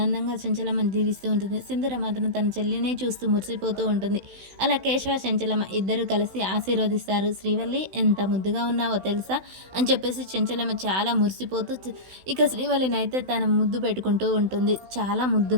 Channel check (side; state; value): left; late; 16 ms